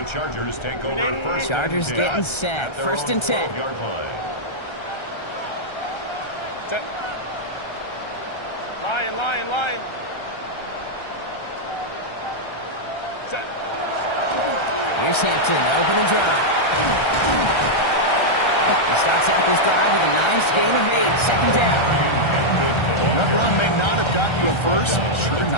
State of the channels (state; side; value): late; right; 1.3 ms